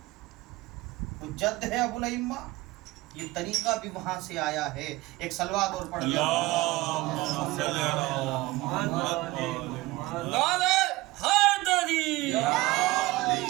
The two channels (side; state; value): left; quieter; 19.7 dB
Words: تو جد ہے ابو الائمہ، یہ طریقہ بھی وہاں سے آیا ہے۔ ایک صلوات اور پڑھ لیا